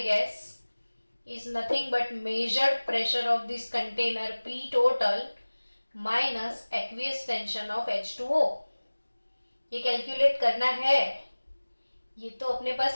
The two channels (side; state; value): both; inverted; correlation -1.00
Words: is nothing but measured pressure of this container P total minus aqueous tension of H2O। ये कैलकुलेट करना है, ये तो अपने पास